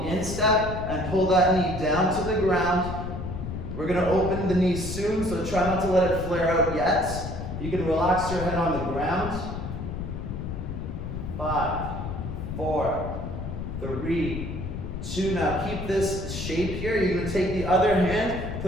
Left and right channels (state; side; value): noise; left; rumble, 6 dB below the sound